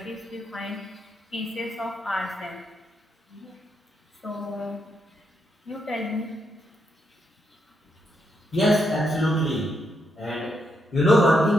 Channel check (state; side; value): normal; both; correlation 0.79